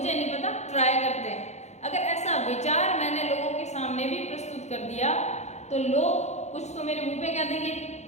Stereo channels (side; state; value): right; late; 0.33 ms